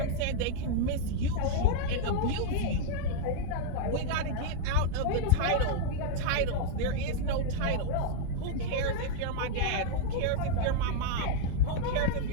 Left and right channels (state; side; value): different; both; correlation 0.00